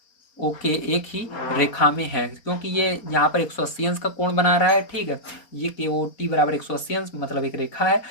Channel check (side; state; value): right; late; 4.3 ms